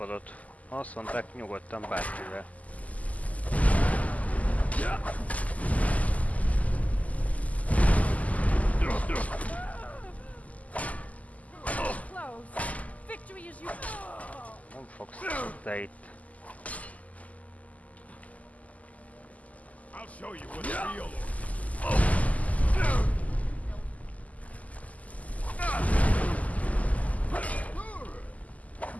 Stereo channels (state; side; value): late; right; 0.074 ms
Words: Azt mondták, nyugodtan bárkivel. Nem fogsz te itt. I'll show you what's real.